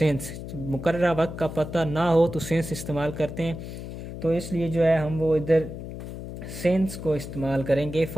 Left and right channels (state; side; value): noise; left; hum, 9 dB below the sound